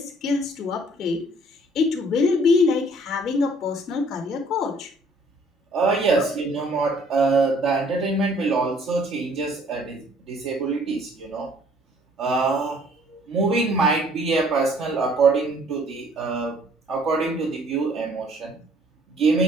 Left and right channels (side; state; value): both; normal; correlation 0.58